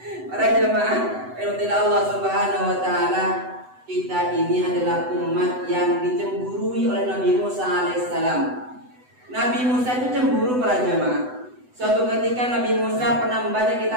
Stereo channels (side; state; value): left; late; 8.0 ms